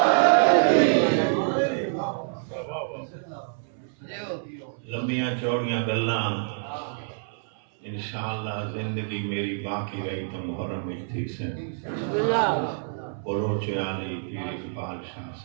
لمبیاں چوڑیاں گلاں انشاءاللہ زندگی میری باقی رہی تو محرم میں تھی سے بلوچ علی پیر اقبال شاہ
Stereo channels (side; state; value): left; silent; 60 dB below the other